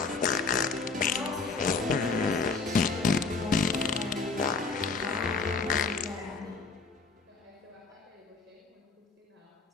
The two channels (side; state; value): right; quieter; 4.5 dB